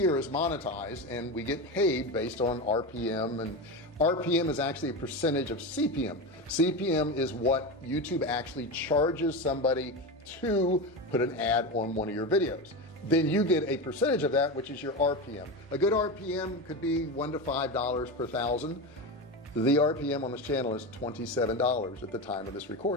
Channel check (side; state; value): both; normal; correlation 0.20